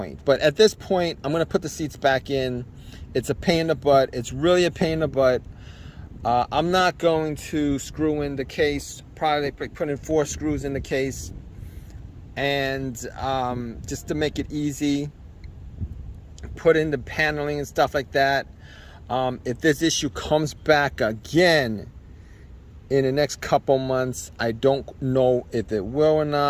But at this point, I'm going to put the seats back in. It's a pain in the butt. It's really a pain in the butt. I'm not going to screw in the case, probably put in 4 screws in the case, and just to make it easy, put in the paneling and stuff like that. If this issue comes back again in the next couple months, I don't know if it will or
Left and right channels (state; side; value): identical; both; correlation 1.00